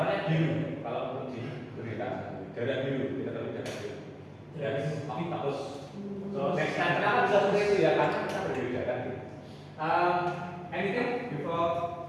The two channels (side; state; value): both; identical; correlation 1.00